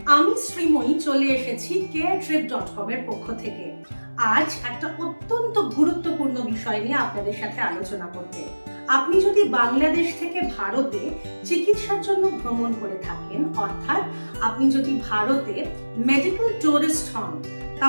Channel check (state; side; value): inverted; both; correlation -1.00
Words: আমি শ্রীময়ী চলে এসেছি caretrip.com এর পক্ষ থেকে। আজ একটা অত্যন্ত গুরুত্বপূর্ণ বিষয় নিয়ে আপনাদের সাথে আলোচনা করতে। আপনি যদি বাংলাদেশ থেকে ভারতে চিকিৎসার জন্য ভ্রমণ করে থাকেন, অর্থাৎ আপনি যদি ভারতে মেডিকেল টুরিস্ট হন,